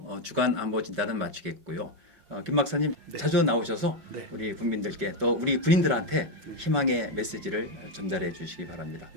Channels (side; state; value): left; late; 5.2 ms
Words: 주간 안보 진단은 마치겠고요. 김 박사님 자주 나오셔서 우리 국민들께 또 우리 군인들한테 희망의 메시지를 전달해 주시기 바랍니다.